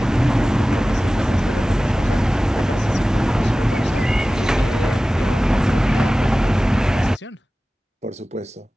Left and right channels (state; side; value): normal; both; correlation 0.97